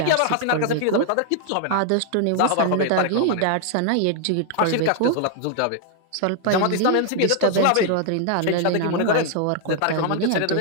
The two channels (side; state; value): both; different; correlation 0.00